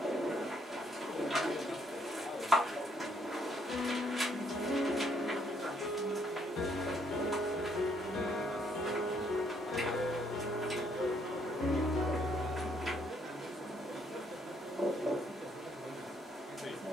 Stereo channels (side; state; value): both; normal; correlation 0.69